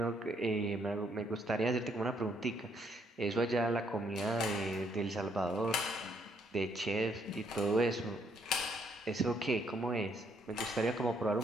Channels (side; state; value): both; normal; correlation 0.70